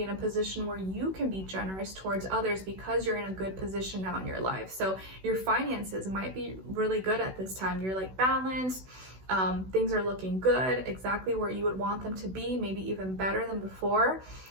in a position where you can be generous towards others because you're in a good position now in your life. So your finances might be really good at this time. You're like balanced. Things are looking good, exactly where you would want them to be, maybe even better than before.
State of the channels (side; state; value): left; late; 16 ms